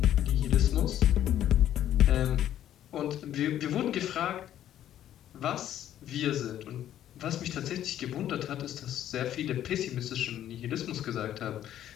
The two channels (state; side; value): quieter; right; 11.5 dB